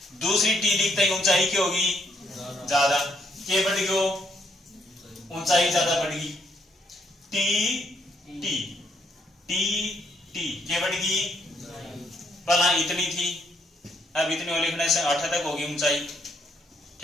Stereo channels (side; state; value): both; normal; correlation 0.73